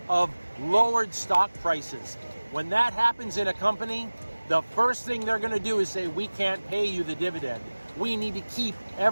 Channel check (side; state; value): both; inverted; correlation -1.00